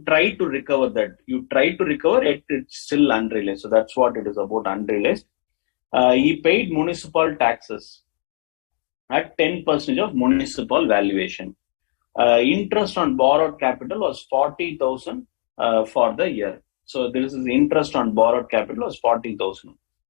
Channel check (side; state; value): right; silent; digital silence